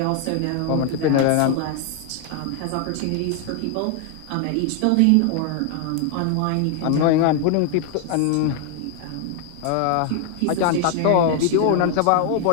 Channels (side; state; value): both; different; correlation 0.00